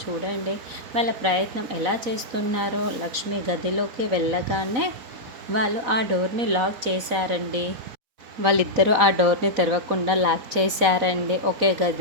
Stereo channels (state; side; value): late; left; 4.0 ms